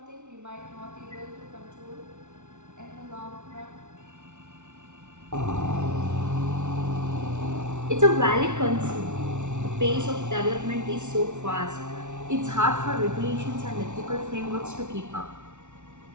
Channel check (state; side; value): late; left; 0.83 ms